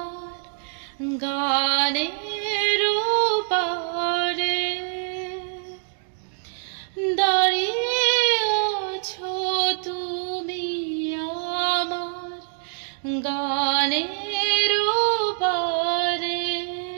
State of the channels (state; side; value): silent; left; digital silence